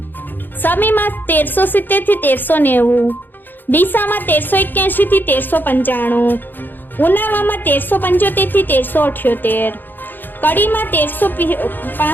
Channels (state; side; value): late; right; 0.092 ms